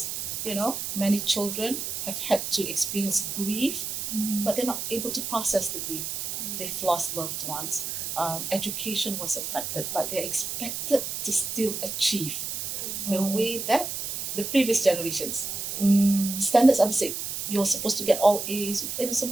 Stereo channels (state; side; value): noise; right; hiss, 4 dB below the sound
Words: many children have had to experience grief, but they're not able to process the grief. They've lost loved ones. Education was affected, but they're expected to still achieve the way that the previous generations. Standards are the same. You're supposed to get all A's,